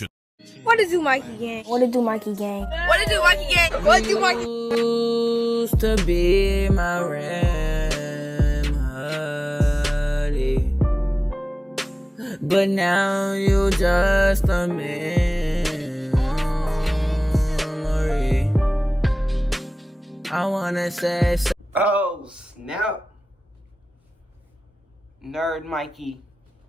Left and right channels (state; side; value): normal; both; correlation 0.98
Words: What it do, Mikey gang? What it do, Mikey gang? What it do, Mikey gang? What it do, Mikey? Used to be my remedy, but now you just a memory. I wanna say so. Oh, snap. Nerd Mikey